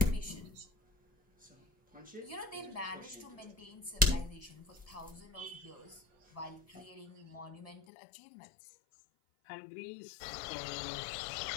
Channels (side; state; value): right; drops out; at 7.8 s